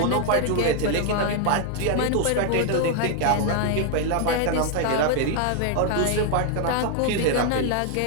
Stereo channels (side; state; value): both; different; correlation 0.00